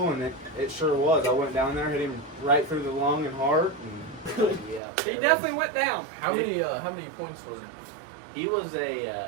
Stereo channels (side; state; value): left; drops out; at 4.8 s